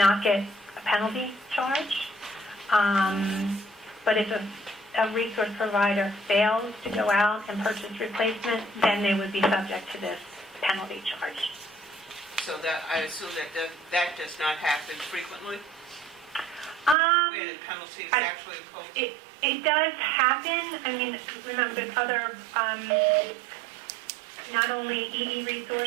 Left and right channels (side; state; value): left; drops out; at 16.9 s